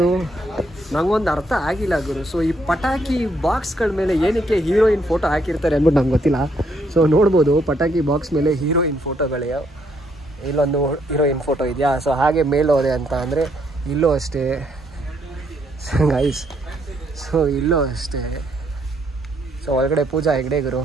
ಅರ್ಥ ಆಗಿಲ್ಲ ಗುರು. ಸೊ ಈ ಪಟಾಕಿ ಬಾಕ್ಸ್ಗಳ ಮೇಲೆ ಏನಕ್ಕೆ ಹೀರೋಯಿನ್ ಫೋಟೋ ಹಾಕಿರ್ತಾರೆ ಅಂದ್ಬಿಟ್ಟು ನಂಗೆ ಗೊತ್ತಿಲ್ಲ. ಸೊ ನೋಡ್ಬೋದು ಪಟಾಕಿ ಬಾಕ್ಸ್ ಮೇಲೆ ಹೀರೋಯಿನ್ ಫೋಟೋಗಳೇ. ಇಲ್ಲೊಂದು ಹೀರೋಯಿನ್ ಫೋಟೋ ಇದೆಯಾ. ಸೊ ಹಾಗೆ ಮೇಲೋದೆ ಅಂತ ಅಂದರೆ ಇಲ್ಲೂ ಅಷ್ಟೇ ಗೈಸ್. ಸೊ ಇಲ್ಲೂ ಅಷ್ಟೇ. ಸೊ ಒಳಗಡೆ ಪೂಜಾ ಹೆಗ್ಡೆ ಗುರು.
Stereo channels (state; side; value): normal; both; correlation 0.72